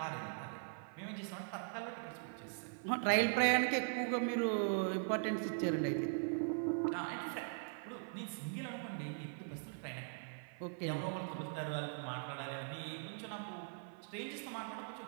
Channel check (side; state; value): left; silent; 51 dB below the other